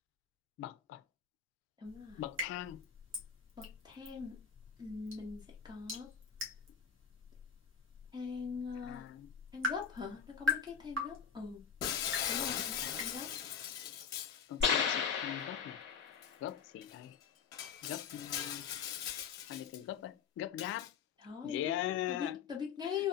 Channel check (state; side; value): quieter; right; 7.2 dB